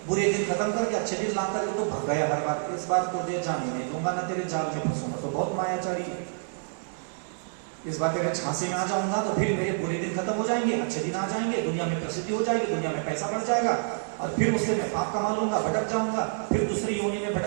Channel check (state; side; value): silent; left; 59 dB below the other